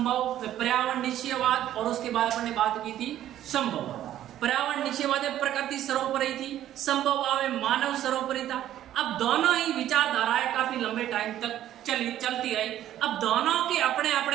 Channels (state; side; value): quieter; left; 12.2 dB